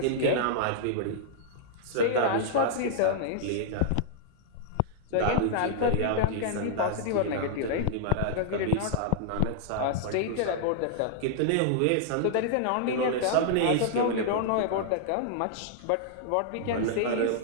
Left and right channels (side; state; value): both; different; correlation -0.01